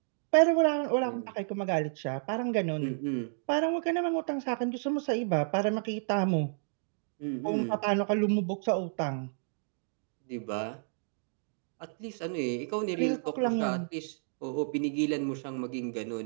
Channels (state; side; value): silent; left; digital silence